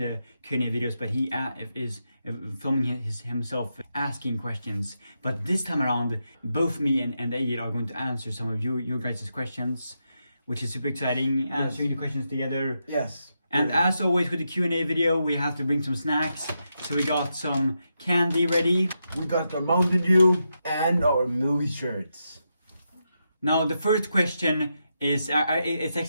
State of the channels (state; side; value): inverted; both; correlation -0.85